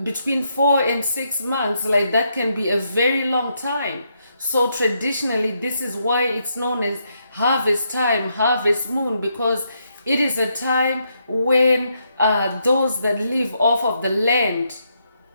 between 4 and 6 months. Like, that can be a very long time. So traditionally, this is why it's known as harvest time, harvest moon, because it is a time when those that live off of the land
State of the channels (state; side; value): inverted; both; correlation -0.78